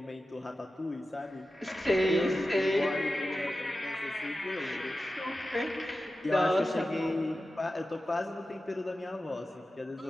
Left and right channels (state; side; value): normal; both; correlation 0.93